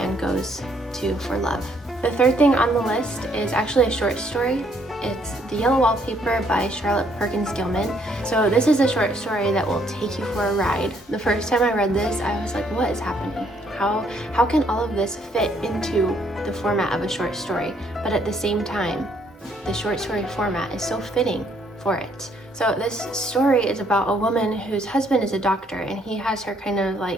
goes to for love. The third thing on the list is actually a short story. It's The Yellow Wallpaper by Charlotte Perkins Gilman. So this is a short story that will take you for a ride. The first time I read this, I was like, what is happening? How can all of this fit into the format of a short story? But at the same time, the short story format is so fitting for it. So this story is about a woman whose husband is a doctor, and he has her kind of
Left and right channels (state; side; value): normal; both; correlation 0.68